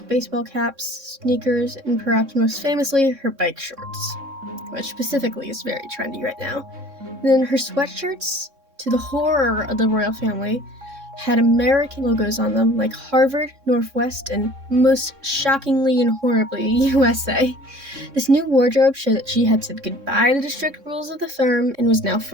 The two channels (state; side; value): late; left; 3.6 ms